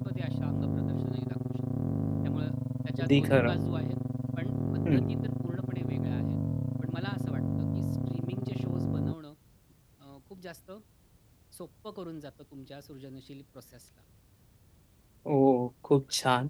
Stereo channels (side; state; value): both; identical; correlation 1.00